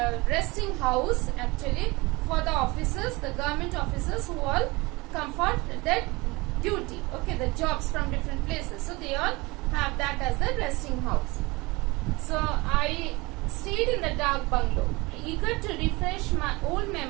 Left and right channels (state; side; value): quieter; left; 24.0 dB